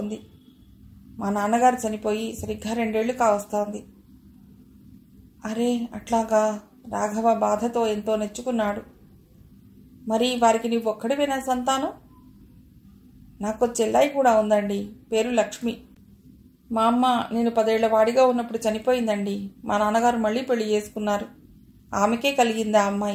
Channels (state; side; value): identical; both; correlation 1.00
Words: మా నాన్నగారు చనిపోయి సరిగ్గా 2 ఏళ్లు కావస్తోంది. అరే అట్లాగా? రాఘవ బాధతో ఎంతో నెచ్చుకున్నాడు. మరి వారికి నీవు ఒక్కడివేనా సంతానం? నాకు చెల్లాయి కూడా ఉందండి, పేరు లక్ష్మి. మా అమ్మ నేను 10 ఏళ్ల వాడిగా ఉన్నప్పుడు చనిపోయిందండి. మా నాన్నగారు మళ్ళీ పెళ్లి చేసుకున్నారు. ఆమెకే కలిగింది ఆ